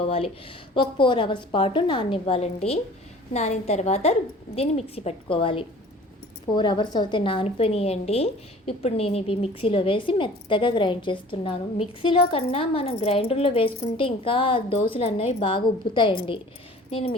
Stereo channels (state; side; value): normal; both; correlation 0.47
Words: ఒక 4 అవర్స్ పాటు నాననివ్వాలండి. నానిన తర్వాత దీన్ని మిక్సీ పట్టుకోవాలి. 4 అవర్స్ అయితే నానిపోయినాయండి. ఇప్పుడు నేను ఇవి మిక్సీలో వేసి మెత్తగా గ్రైండ్ చేస్తున్నాను. మిక్సీలో కన్నా మనం గ్రైండర్లో వేసుకుంటే ఇంకా దోశలు అన్నవి బాగా ఉబ్బుతాయండి. నేను